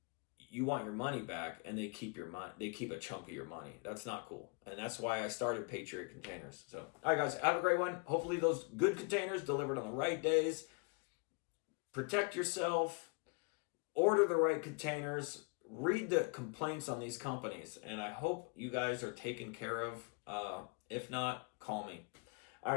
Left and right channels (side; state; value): right; quieter; 34.1 dB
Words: you want your money back and they keep your money, they keep a chunk of your money. That's not cool. And that's why I started Patriot Containers. So, all right, guys, have a great one. Hopefully those good containers delivered on the right days. Protect yourself. Order the right containers. Read the complaints on these companies. And I hope you guys are taken care of. If not, call me. All